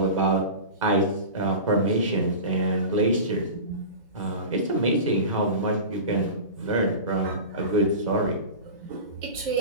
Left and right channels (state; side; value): inverted; both; correlation -0.30